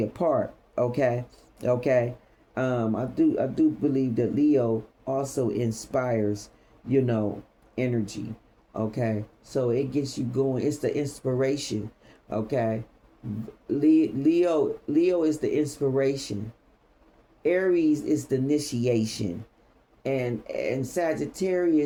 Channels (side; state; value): both; identical; correlation 1.00